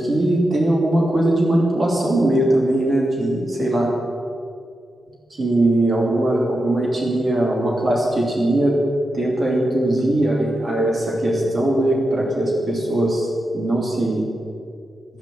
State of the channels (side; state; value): both; normal; correlation 0.88